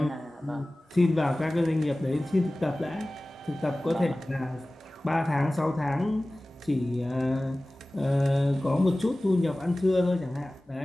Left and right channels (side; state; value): both; normal; correlation 0.98